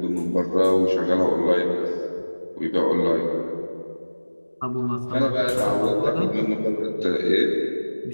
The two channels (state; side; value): inverted; both; correlation -1.00